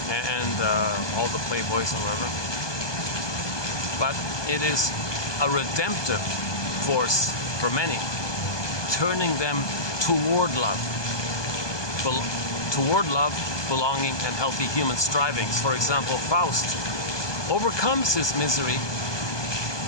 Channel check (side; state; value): right; late; 1.2 ms